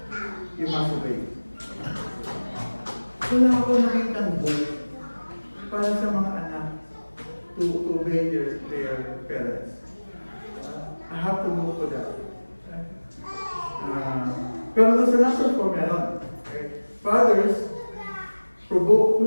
you must obey. Wala ako nakitang book para sa mga anak to obey their parents. I have to look for that. Pero there's another for meron. Okay? Fathers,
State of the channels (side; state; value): both; inverted; correlation -1.00